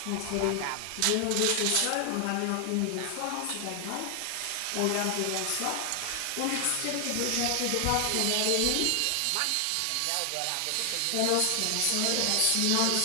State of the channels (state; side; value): different; both; correlation 0.00